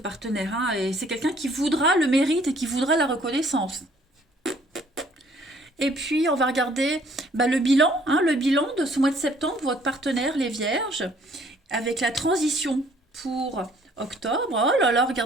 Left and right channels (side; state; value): both; normal; correlation 0.60